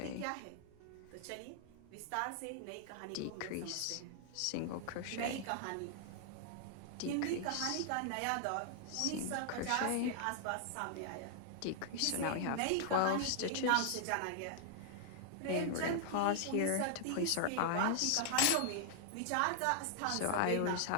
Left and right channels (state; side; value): different; both; correlation 0.00